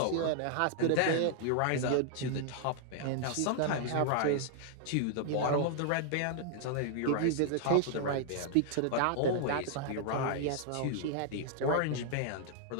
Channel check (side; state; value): both; different; correlation -0.01